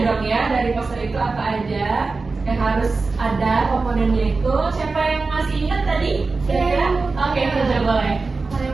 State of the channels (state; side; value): quieter; left; 4.0 dB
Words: dong ya, dari poster itu apa aja yang harus ada komponennya itu. Siapa yang masih ingat tadi? Kira-kira? Oke, sudah boleh. Hal